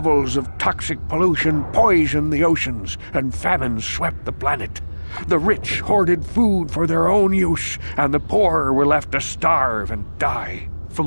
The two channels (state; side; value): inverted; both; correlation -1.00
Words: of toxic pollution poisoned the oceans, and famine swept the planet. The rich hoarded food for their own use, and the poor were left to starve and die.